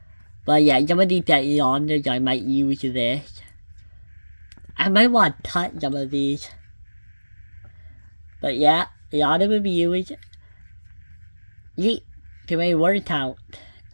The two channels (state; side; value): inverted; both; correlation -1.00